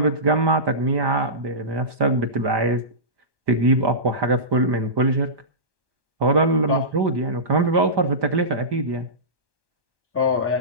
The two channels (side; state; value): left; late; 1.2 ms